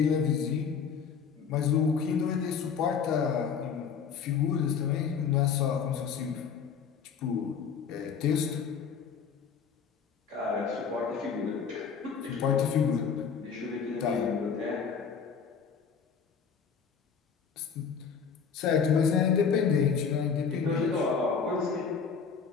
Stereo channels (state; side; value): quieter; right; 6.4 dB